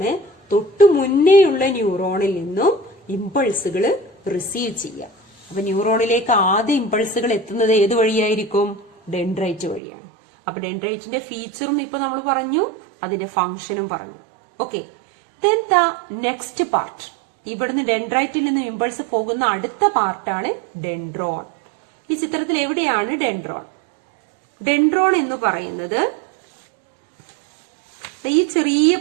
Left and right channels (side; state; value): left; drops out; at 9.8 s